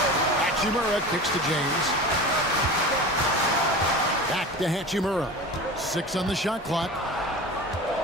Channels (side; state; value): both; normal; correlation 0.33